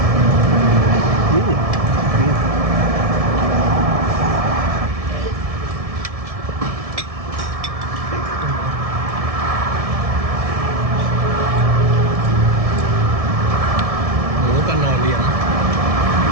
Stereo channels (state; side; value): late; left; 1.7 ms